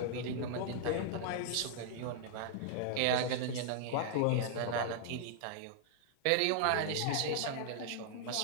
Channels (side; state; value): both; different; correlation -0.01